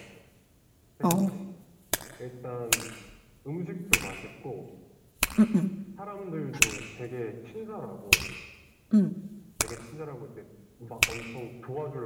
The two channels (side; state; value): both; identical; correlation 1.00